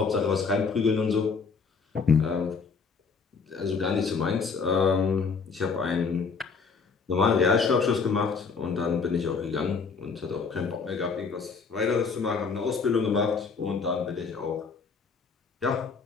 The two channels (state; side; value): quieter; right; 5.1 dB